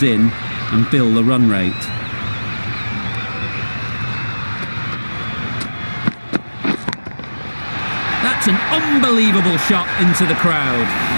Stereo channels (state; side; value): inverted; both; correlation -1.00